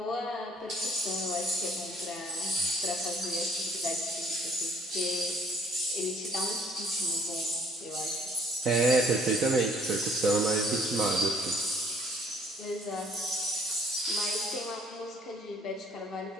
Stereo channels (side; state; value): both; normal; correlation 0.60